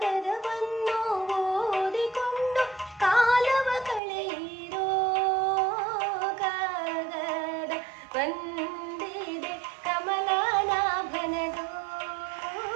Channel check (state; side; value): drops out; left; at 4.0 s